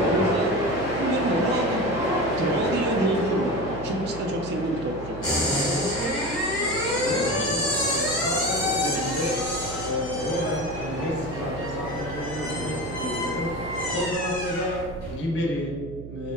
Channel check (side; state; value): right; noise; hum, 12 dB below the sound